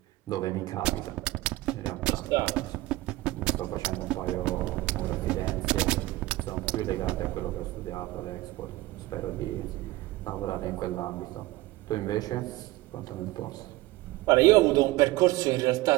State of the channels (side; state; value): left; quieter; 18.5 dB